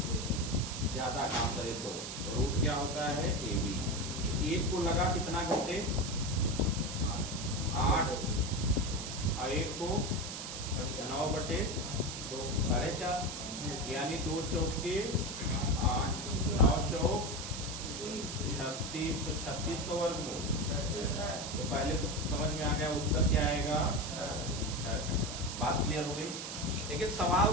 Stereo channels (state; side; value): noise; right; hiss, 7 dB below the sound